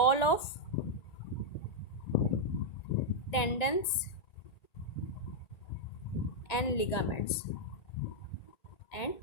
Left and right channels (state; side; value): late; right; 1.8 ms